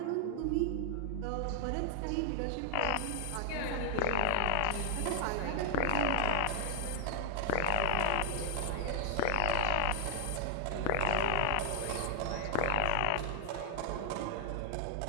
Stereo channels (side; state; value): both; different; correlation 0.00